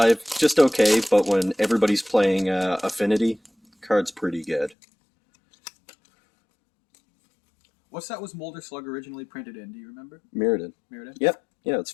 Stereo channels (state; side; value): drops out; right; at 4.8 s